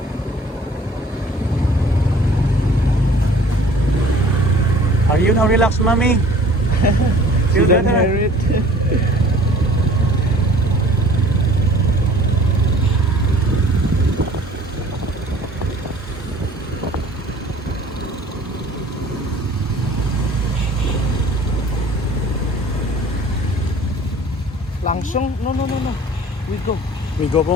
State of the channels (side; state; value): both; normal; correlation 0.50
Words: Are you now relaxed, mommy? Feel Didn't better? hear it. Langsung? No. We go. We go